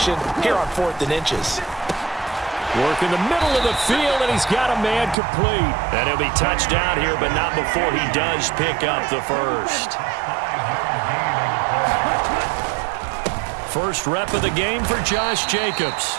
here on 4th and inches. Work in the middle of the field, and he's got a man complete. And he'll be touchdown here, but not before he does pick up the first. First rep of the game for Josh Jacobs.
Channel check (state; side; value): drops out; left; at 5.2 s